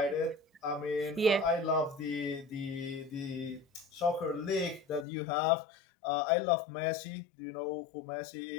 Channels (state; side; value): drops out; right; at 5.1 s